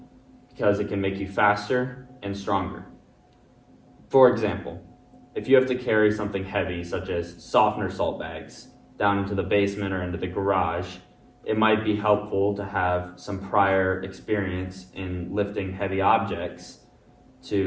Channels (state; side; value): identical; both; correlation 1.00